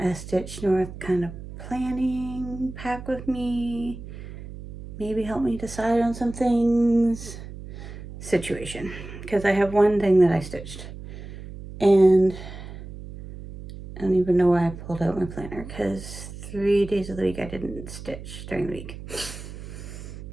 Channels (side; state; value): right; noise; hum, 12 dB below the sound